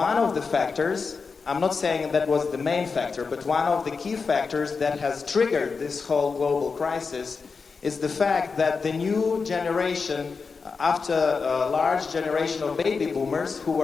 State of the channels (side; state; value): right; quieter; 4.9 dB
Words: of the factors, I'm not saying that was the main factor, but one of the key factors that has triggered this whole global crisis is the fact that the new generation, after a large generation of baby boomers who